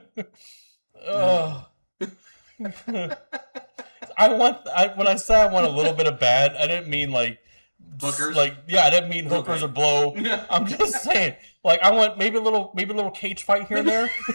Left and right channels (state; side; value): inverted; both; correlation -1.00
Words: Oh. When I say I want a little bit of bad, I didn't mean like Hookers? I didn't mean hookers Okay. or blow. Yeah. I'm just saying, like, I want maybe a little cage fight here and there.